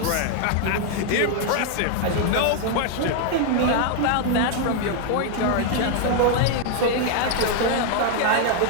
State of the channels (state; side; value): different; both; correlation 0.00